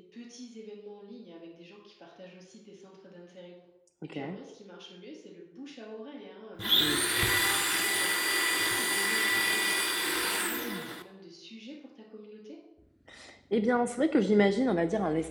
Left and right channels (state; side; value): identical; both; correlation 1.00